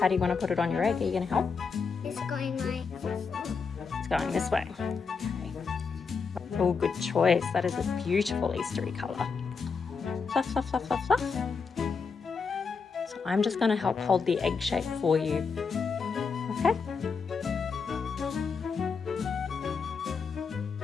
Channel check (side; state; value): right; quieter; 5.3 dB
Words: do you want to put it on your egg? Are you going to help? It's going like... It's going this way. Okay. Oh, good choice. That is a beautiful Eastery colour. Fluff, fluff, fluff, fluff, fluff. So I'm just going to help hold the egg shape for you. Okay?